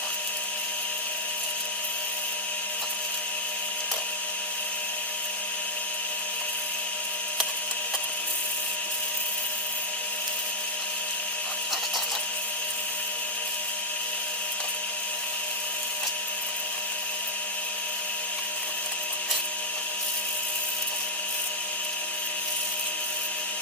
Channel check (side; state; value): both; normal; correlation -0.06